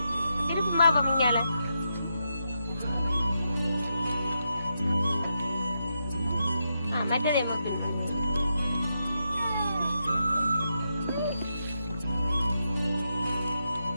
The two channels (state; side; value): inverted; both; correlation -0.84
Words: இருக்குமா பமிங்கால மற்றதே